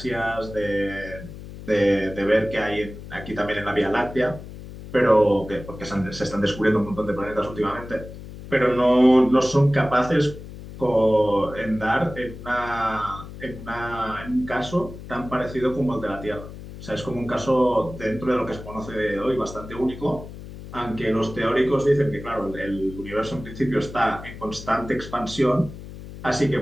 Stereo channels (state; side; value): noise; left; hum, 13 dB below the sound